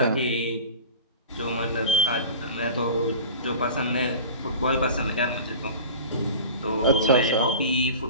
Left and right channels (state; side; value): inverted; both; correlation -0.36